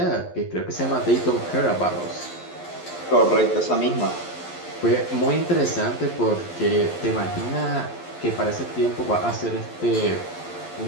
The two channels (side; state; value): right; late; 11 ms